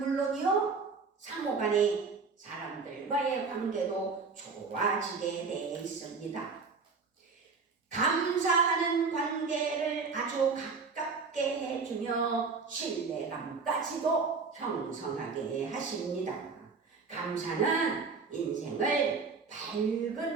상호간의 사람들과의 관계도 좋아지게 되어 있습니다. 감사하는 관계를 아주 가깝게 해주며 신뢰감까지도 형성하게 하십니다. 감사는 인생을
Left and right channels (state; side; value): quieter; left; 4.7 dB